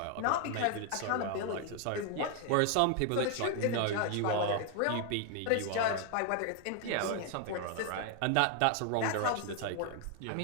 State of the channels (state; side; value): different; both; correlation 0.01